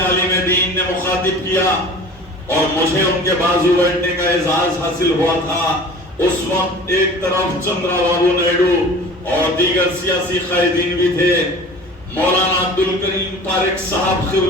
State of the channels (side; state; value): both; normal; correlation 0.42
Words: دین نے مخاطب کیا، اور مجھے ان کے بازو بیٹھنے کا اعزاز حاصل ہوا تھا۔ اس وقت ایک طرف چندرا بابو نائیڈو اور دیگر سیاسی قائدین بھی تھے۔ مولانا عبدالکریم پارک صاحب